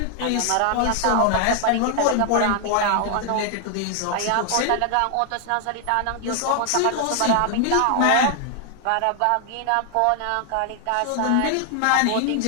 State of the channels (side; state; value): both; different; correlation 0.00